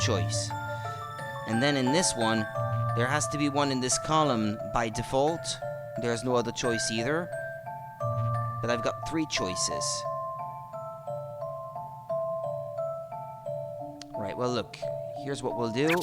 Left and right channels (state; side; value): identical; both; correlation 1.00